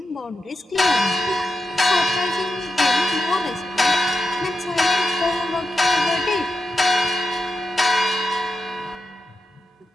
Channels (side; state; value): both; normal; correlation 0.90